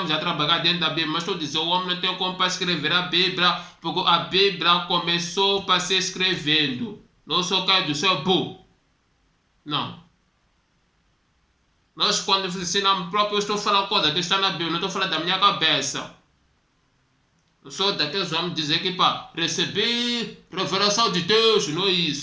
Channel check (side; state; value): both; identical; correlation 1.00